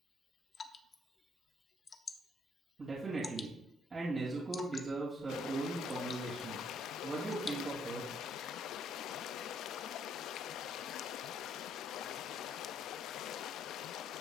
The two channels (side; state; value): both; normal; correlation 0.68